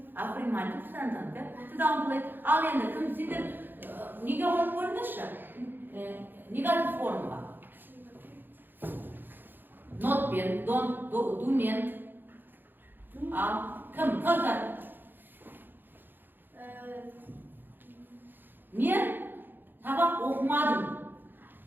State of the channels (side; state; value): left; late; 0.094 ms